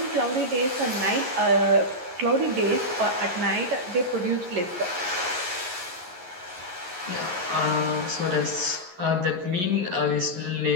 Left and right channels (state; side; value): late; left; 11 ms